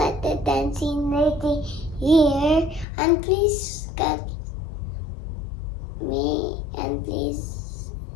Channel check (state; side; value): drops out; right; at 2.9 s